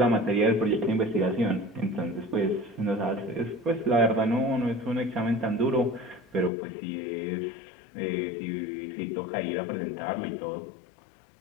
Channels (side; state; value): right; drops out; at 6.5 s